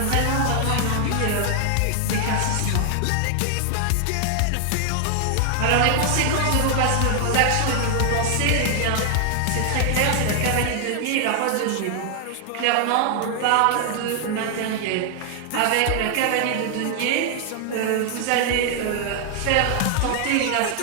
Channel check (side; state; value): both; different; correlation 0.00